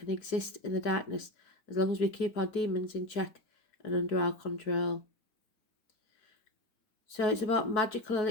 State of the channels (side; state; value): right; late; 4.7 ms